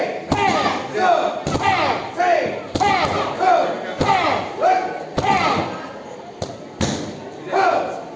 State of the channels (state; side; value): identical; both; correlation 1.00